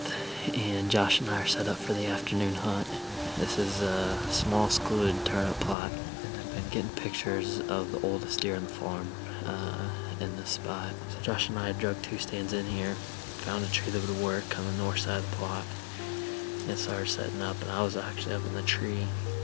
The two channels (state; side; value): drops out; right; at 5.8 s